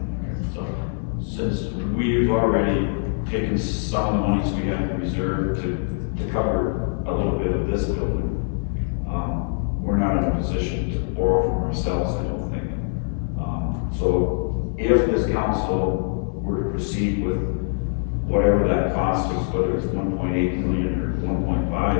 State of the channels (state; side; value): silent; right; 63 dB below the other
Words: So, since we've already taken some of the monies we have in reserve to cover a little bit of this building, we're not in a position to borrow from ourselves, I don't think. So if this council were to proceed with whatever that cost is, whether it's 1.8 million or 1.5